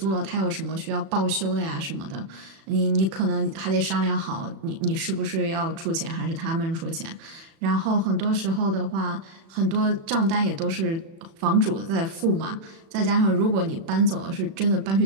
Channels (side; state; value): left; late; 36 ms